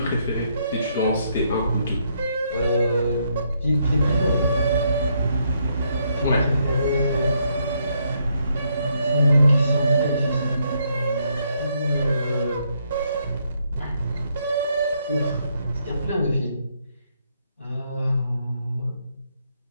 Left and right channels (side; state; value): both; inverted; correlation -0.75